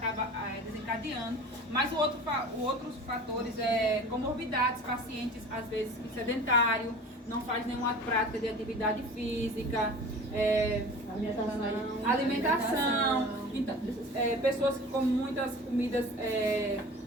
desencadeando. Mas outros fatores é comorbidades, pacientes às vezes sedentário, não faz nenhuma prática de atividade física, alimentação. Então, pessoas que comem muitas comidas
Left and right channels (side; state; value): both; normal; correlation 0.39